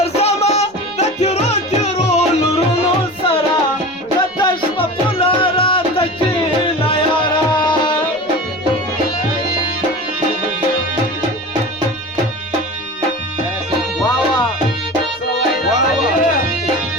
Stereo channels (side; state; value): right; noise; rumble, 28 dB below the sound